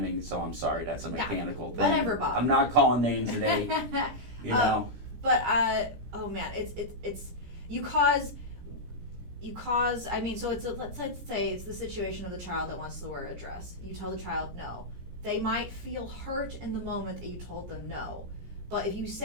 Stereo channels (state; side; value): late; left; 17 ms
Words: so I'm sorry, that's a mechanical thing. Whatever, Bob. I'm not calling names today, But oh man, it's you cause. I mean, so let's say it's the situation of the child that wants to wear a dress. You tell the child no. They might feel hurt in the moment that you told them no, but if you